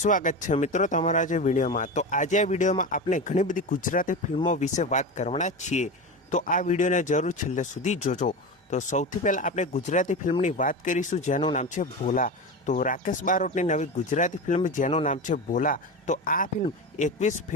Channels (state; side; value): normal; both; correlation 0.23